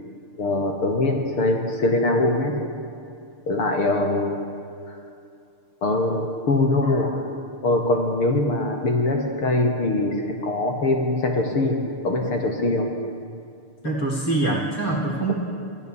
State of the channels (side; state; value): right; late; 6.8 ms